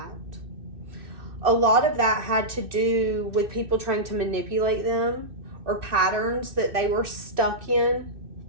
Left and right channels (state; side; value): late; left; 2.6 ms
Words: A lot of that had to do with people trying to manipulate them or patterns that they were stuck in